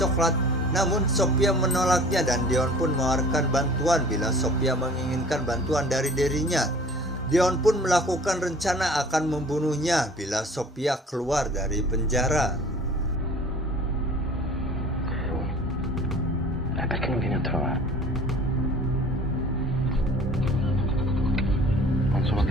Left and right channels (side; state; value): both; normal; correlation 0.46